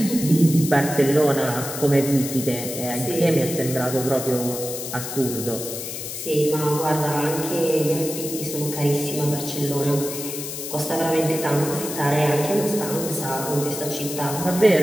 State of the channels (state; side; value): noise; left; hiss, 7 dB below the sound